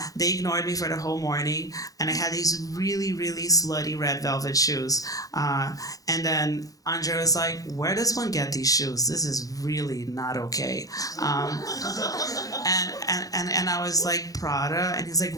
They ignored me for the whole morning, and I had these really, really slutty red velvet shoes. And then Andre was like, "Where does one get these shoes? This is really not okay." And I was like, "Prada," and he's like,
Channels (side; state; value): right; late; 0.17 ms